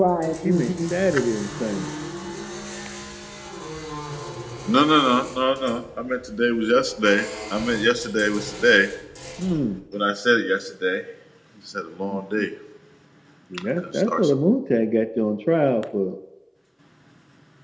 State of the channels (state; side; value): identical; both; correlation 1.00